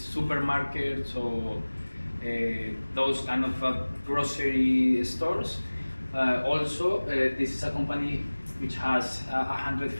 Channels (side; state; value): both; inverted; correlation -1.00